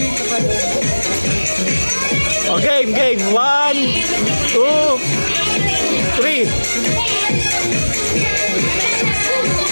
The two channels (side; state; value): both; inverted; correlation -1.00